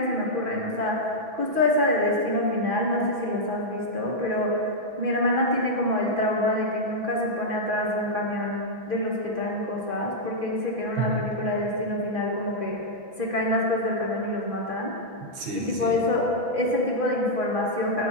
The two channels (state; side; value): late; left; 6.0 ms